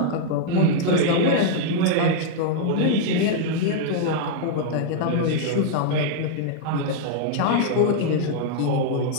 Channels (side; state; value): both; different; correlation -0.01